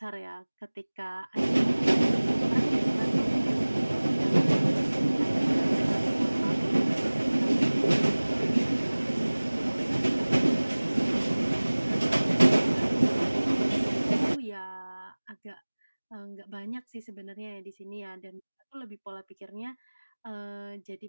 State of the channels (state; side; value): inverted; both; correlation -1.00